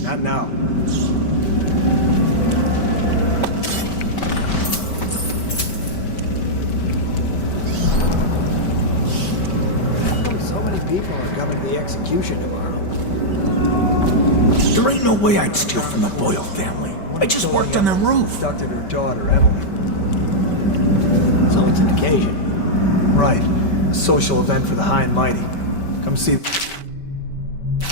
now. How come so many people are coming to the execution tomorrow. There ain't no way I'd steal from the Boyle family. I just worked on the roof. Abducted her daughter, Emily. So it's an occasion. Right. A social event for the high and mighty. Come see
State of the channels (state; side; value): late; right; 5.2 ms